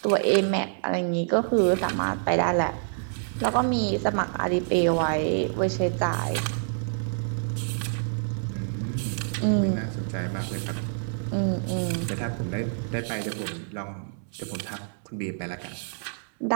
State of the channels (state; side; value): silent; left; 60 dB below the other